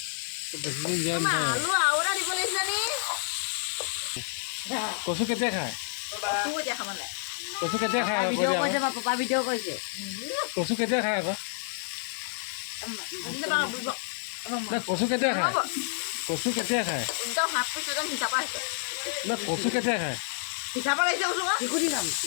বেছিদিন জীয়াই নাথাকে। আলু আৰু এটা দিব লাগিছিলে নি? কচু কেতিয়া খায়? কচু এতিয়া খাব নাই। কচু কেতিয়া খায়? ভিডিঅ' কৰিছে বা পাপা ভিডিঅ' কৰিছে। কচু কেতিয়া খায় আকৌ? কচু কেতিয়া খায়? কচু কেতিয়া খায়? একদম হাত পিছ একদম হিচাপা হৈছে। কচু কেতিয়া খায়? হিচাপা লাগিছে কচু আকৌ। শিশুটি খাম।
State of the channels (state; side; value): silent; right; digital silence